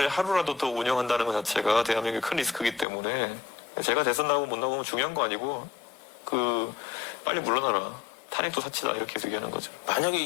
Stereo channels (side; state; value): right; drops out; at 2.9 s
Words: 하루라도 더 운영한다는 것 자체가 대한민국의 큰 리스크이기 때문에 제가 대선 나오고 못 나오면 중요한 거 아니고 빨리 물러나라. 탄핵도 사치다 이렇게 계속 얘기하는 거죠. 만약에